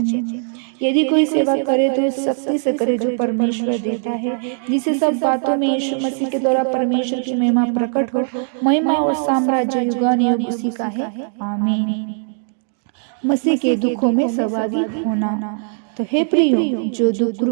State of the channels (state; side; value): silent; left; 66 dB below the other